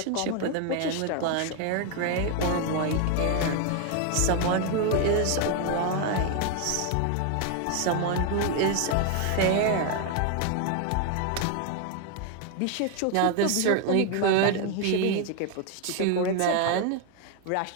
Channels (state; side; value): different; both; correlation 0.01